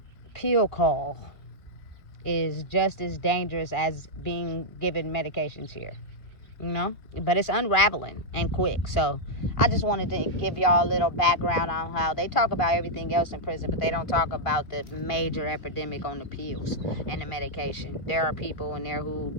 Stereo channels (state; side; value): late; right; 2.2 ms